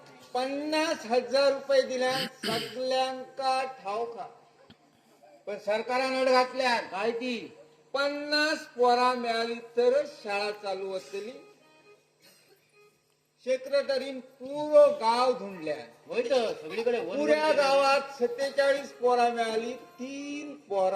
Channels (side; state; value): both; identical; correlation 1.00